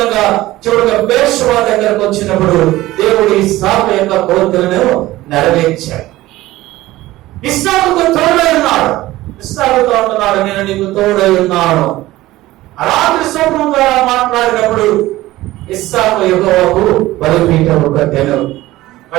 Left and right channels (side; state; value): left; quieter; 17.1 dB